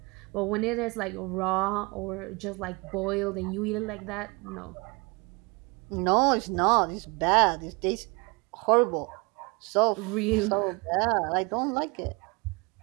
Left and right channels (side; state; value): left; quieter; 27.9 dB